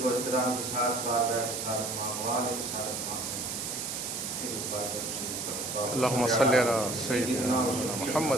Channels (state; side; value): noise; right; hiss, 4 dB below the sound